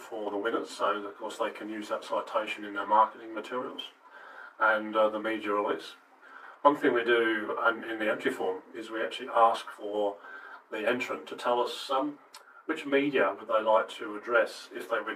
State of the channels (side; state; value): both; identical; correlation 1.00